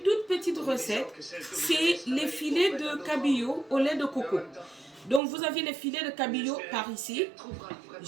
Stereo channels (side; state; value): left; drops out; at 5.2 s